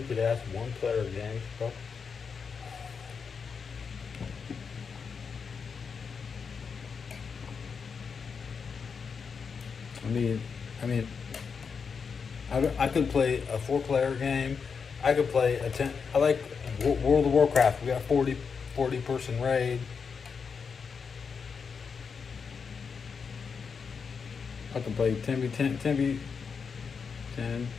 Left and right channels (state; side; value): quieter; right; 5.8 dB